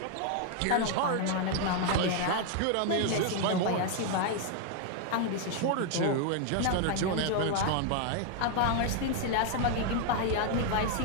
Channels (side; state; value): both; different; correlation 0.00